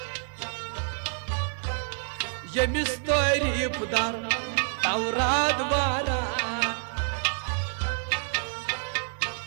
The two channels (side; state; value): left; silent; 58 dB below the other